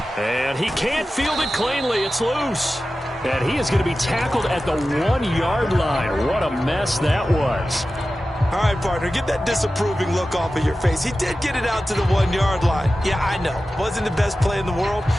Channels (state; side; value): normal; both; correlation 0.94